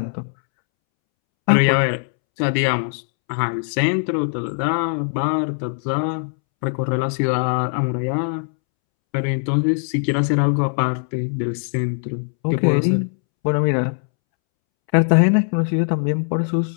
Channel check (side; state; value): right; silent; 65 dB below the other